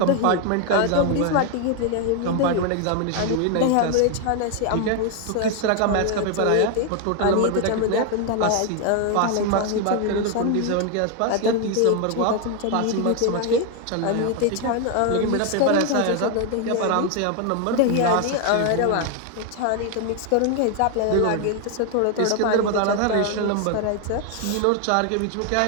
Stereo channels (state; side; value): different; both; correlation 0.01